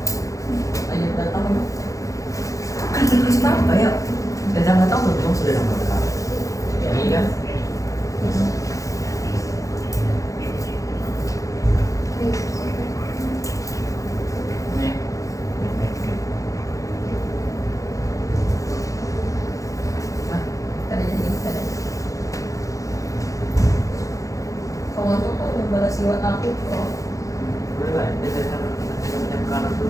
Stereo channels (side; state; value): right; late; 0.16 ms